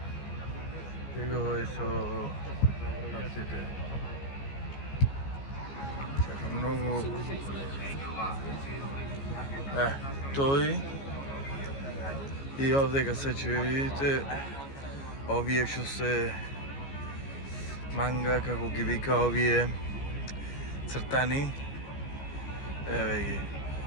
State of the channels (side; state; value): right; late; 15 ms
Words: Его е со птиците. Чакам многу. Тој и овдека се видите овие што се манга, како ги вика овие цртани. Еве ги.